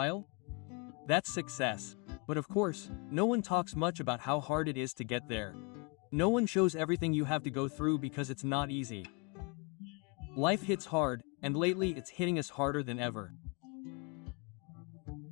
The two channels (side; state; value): right; quieter; 31.3 dB